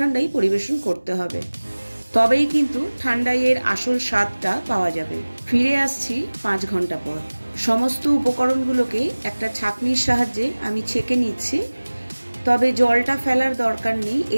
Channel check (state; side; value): inverted; both; correlation -1.00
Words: পরিবেশন করতে হবে, তবেই কিন্তু ঠান্ডাইয়ের আসল স্বাদটা পাওয়া যাবে। ফিরে আসছি 5 ঘন্টা পর। সমস্ত উপকরণগুলোকে একটা ছাঁকনির সাহায্যে আমি ছেঁকে নিচ্ছি, তবে জলটা ফেলার দরকার নেই।